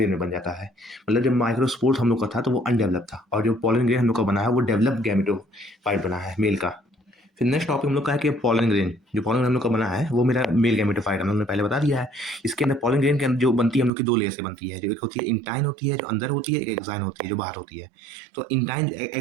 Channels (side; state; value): left; drops out; at 13.9 s